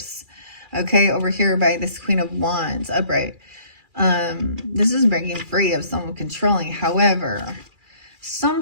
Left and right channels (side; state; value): left; late; 2.4 ms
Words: okay? Over here by this Queen of Wands, upright. This is breaking free of someone controlling. However,